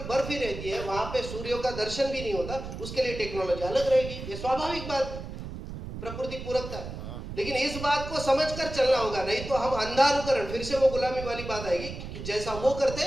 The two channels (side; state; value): right; noise; rumble, 9 dB below the sound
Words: बर्फ ही रहती है, वहां पे सूर्य का दर्शन भी नहीं होता, उसके लिए टेक्नोलॉजी अलग रहेगी। ये स्वाभाविक बात, प्रकृति पूरकता है। लेकिन इस बात को समझकर चलना होगा, नहीं तो हम अंधानुकरण, फिर से वो गुलामी वाली बात आएगी कि जैसा वो